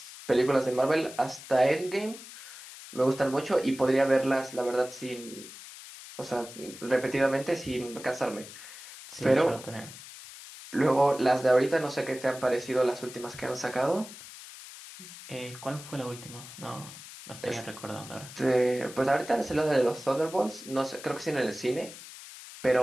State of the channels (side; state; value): left; noise; hiss, 15 dB below the sound